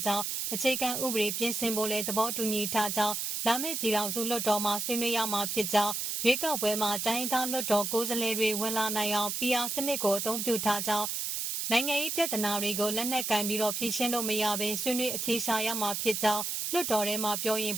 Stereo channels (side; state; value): right; noise; hiss, 2 dB below the sound